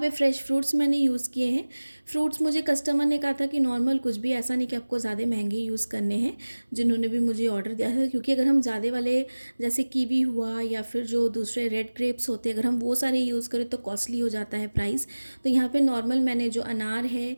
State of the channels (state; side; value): inverted; both; correlation -1.00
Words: फ्रेश फ्रूट्स मैंने यूज़ किए हैं। फ्रूट्स मुझे कस्टमर ने कहा था कि नॉर्मल, कुछ भी ऐसा नहीं कि आपको ज़्यादा महंगे यूज़ करने हैं, जिन्होंने भी मुझे ऑर्डर दिया था। क्योंकि अगर हम ज़्यादा वाले जैसे कीवी हुआ या फिर जो दूसरे रेड ग्रेप्स होते हैं, अगर हम वो सारे यूज़ करें तो कॉस्टली हो जाता है प्राइस। तो यहाँ पे नॉर्मल मैंने जो अनार है,